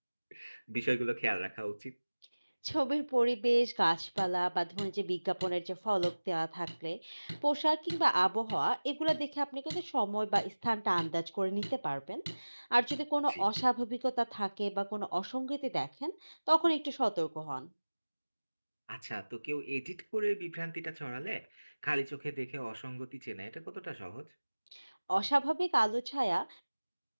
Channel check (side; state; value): both; inverted; correlation -1.00